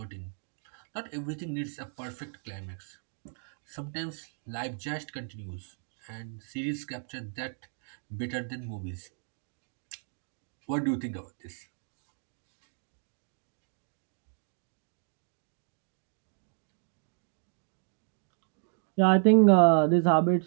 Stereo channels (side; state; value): left; silent; 56 dB below the other